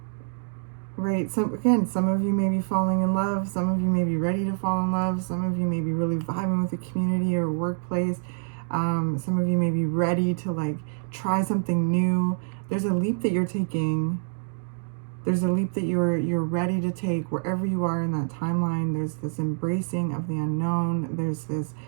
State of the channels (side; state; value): left; silent; 57 dB below the other